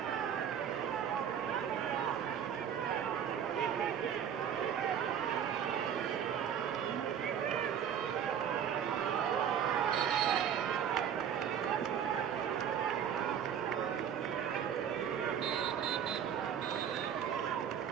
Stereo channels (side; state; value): left; quieter; 8.6 dB